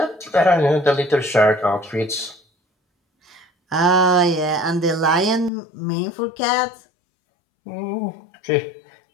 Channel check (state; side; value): drops out; right; at 5.5 s